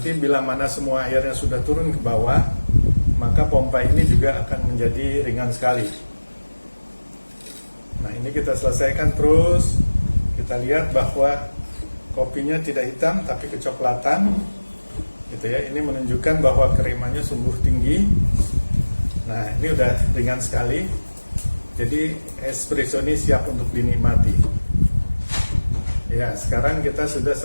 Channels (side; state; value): both; inverted; correlation -1.00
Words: bila mana semua airnya sudah turun ke bawah, maka pompa ini juga akan menjadi ringan sekali. Nah, ini kita selesaikan terus. Kita lihat bahwa kopinya tidak hitam tapi kecoklatan. Gitu ya. Ini menunjukkan bahwa kremanya sungguh tinggi. Nah, ini udah ringan sekali. Jadi espresso ini siap untuk dinikmati. Ya, sekarang kita sudah